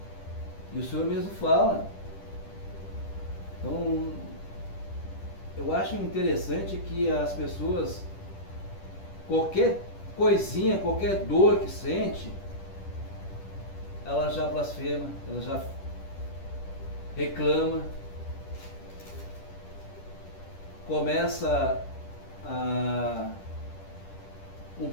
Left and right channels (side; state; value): right; late; 10 ms